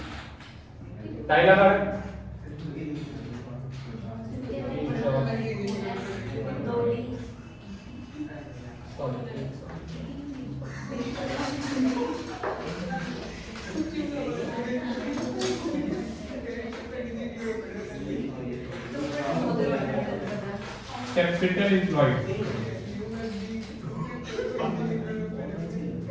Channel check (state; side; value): identical; both; correlation 1.00